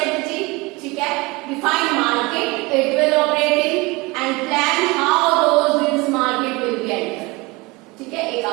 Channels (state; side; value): quieter; left; 24.3 dB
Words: ठीक है, define market it will operate in and plan how those business market will be enter. ठीक है, एक